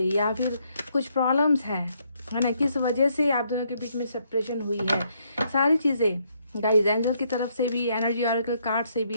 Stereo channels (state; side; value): inverted; both; correlation -0.72